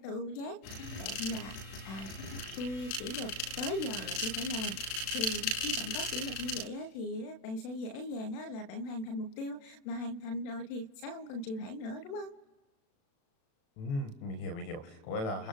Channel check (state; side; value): late; right; 36 ms